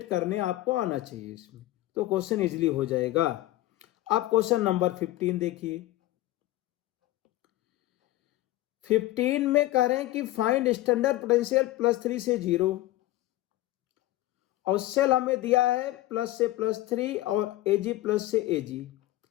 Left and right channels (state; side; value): quieter; right; 16.5 dB